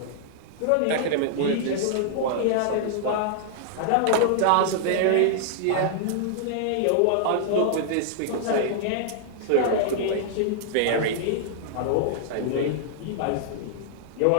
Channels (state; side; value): different; both; correlation -0.01